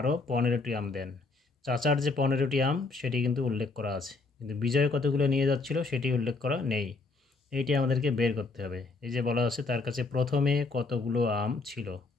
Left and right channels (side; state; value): right; quieter; 3.7 dB